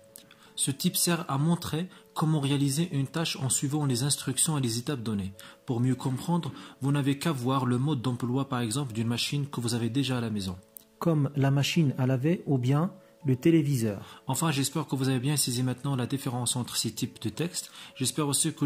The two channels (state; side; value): identical; both; correlation 1.00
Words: Ce type sert à montrer comment réaliser une tâche en suivant les instructions et les étapes données. Pour mieux comprendre, vous n'avez qu'à voir le mode d'emploi, par exemple, d'une machine que vous avez déjà à la maison. Comme la machine à laver ou bien le téléviseur. Enfin, j'espère que vous avez bien saisi maintenant la différence entre ces types de textes. J'espère aussi que